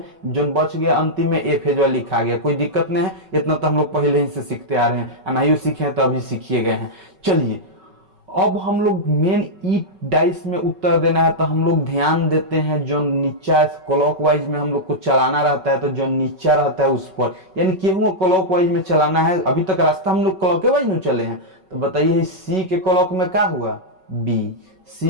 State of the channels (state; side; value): late; left; 5.3 ms